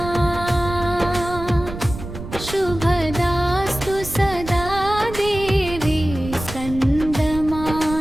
शुभदास्तु सदा देवी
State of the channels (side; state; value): right; noise; rumble, 10 dB below the sound